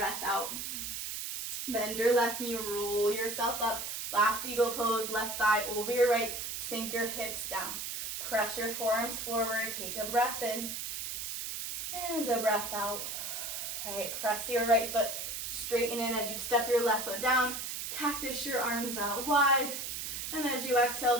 out. Bend your left knee, roll yourself up, last eagle pose, left thigh over your right, sink your hips down. Press your forearms forward, take a breath in and a breath out. All right, press your right foot, straighten in as you step your left foot down, cactus your arms out wide, and as you exhale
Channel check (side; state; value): right; noise; hiss, 5 dB below the sound